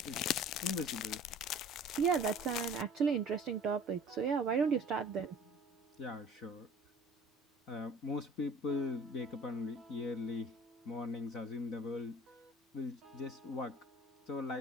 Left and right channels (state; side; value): normal; both; correlation 0.47